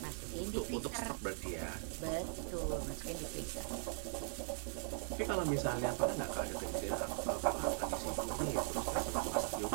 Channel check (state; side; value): silent; left; digital silence